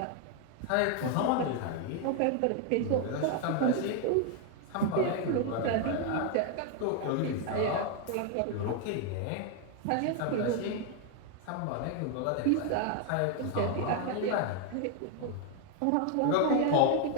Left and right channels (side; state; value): both; different; correlation 0.01